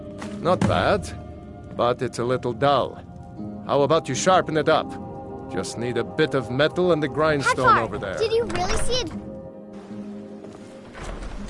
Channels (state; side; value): identical; both; correlation 1.00